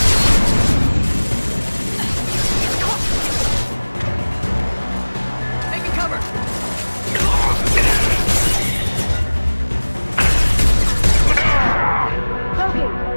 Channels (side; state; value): both; inverted; correlation -1.00